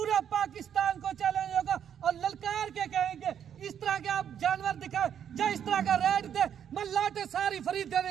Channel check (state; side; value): quieter; left; 8.8 dB